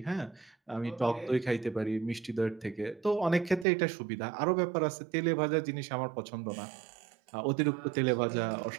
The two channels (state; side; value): drops out; left; at 3.7 s